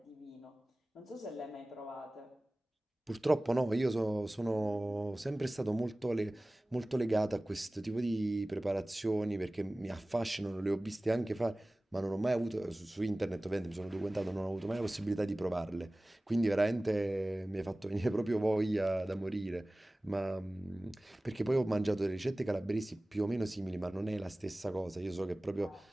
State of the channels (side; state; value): both; normal; correlation 0.98